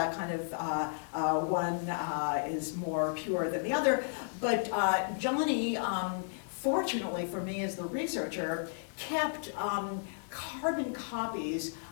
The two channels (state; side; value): silent; right; 55 dB below the other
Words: kind of one is more pure than the other. But Johnny, fortunately for me as the researcher, kept carbon copies